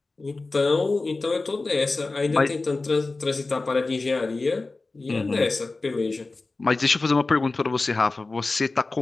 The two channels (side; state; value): right; quieter; 3.5 dB